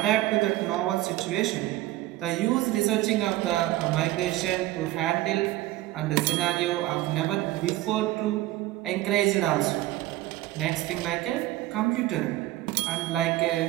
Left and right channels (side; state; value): left; quieter; 16.3 dB